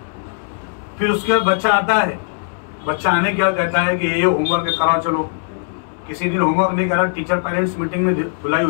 پھر اس کے بعد بچہ آتا ہے, بچہ آنے کے بعد کہتا ہے کہ یہ ہوم ورک کراؤ, چلو. کسی دن ہوم ورک نہیں کرا, ٹیچر پیرنٹس میٹنگ میں دھلائی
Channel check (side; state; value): right; silent; digital silence